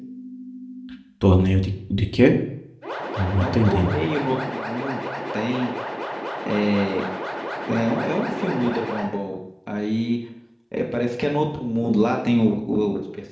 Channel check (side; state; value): both; identical; correlation 1.00